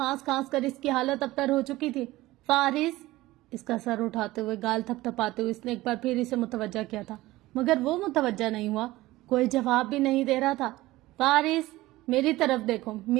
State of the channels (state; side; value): quieter; left; 18.0 dB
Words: کھانس کر اس کی حالت ابتر ہو چکی تھی۔ فارس، اس کا سر اٹھاتے ہوئے، گال تھپ تھپاتے ہوئے اس نے ایک بار پھر اسے متوجہ کیا تھا، مگر وہ متوجہ نہیں ہوا، کوئی جواب بھی نہیں دے رہا تھا۔ فارس، میری طرف دیکھو،